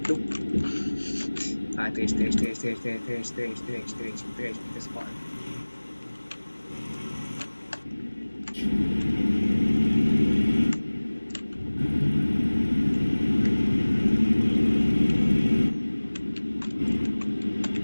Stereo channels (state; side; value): inverted; both; correlation -1.00